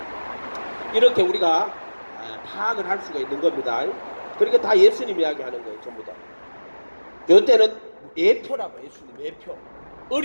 이렇게 우리가 파악을 할 수가 있는 겁니다. 그러니까 다 예수님 이야기하는 거예요. 전부 다. 이때는 예표라고, 예수님 예표,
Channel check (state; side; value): inverted; both; correlation -1.00